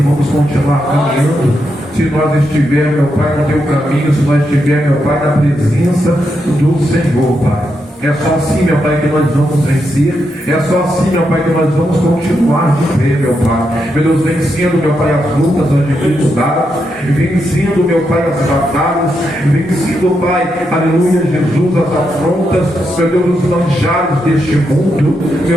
vamos continuar caminhando, se nós estivermos, meu Pai, no Teu caminho, se nós estivermos, meu Pai, na presença do Senhor, Pai. É só assim, meu Pai, que nós vamos vencer. É só assim, meu Pai, que nós vamos continuar de pé, meu Pai. Meu Deus, vencendo, meu Pai, as lutas, as dificuldades, vencendo, meu Pai, as batalhas, vencendo, Pai, aleluia, Jesus, as afrontas, meu Deus, os manjares deste mundo,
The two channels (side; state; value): both; normal; correlation 0.83